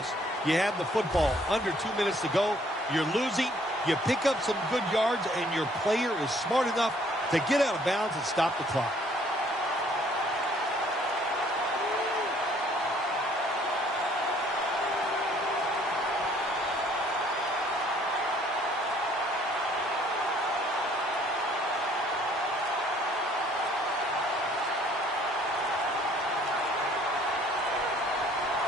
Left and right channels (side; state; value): both; normal; correlation 0.60